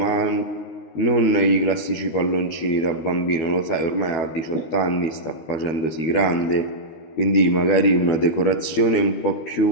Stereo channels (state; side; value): late; right; 13 ms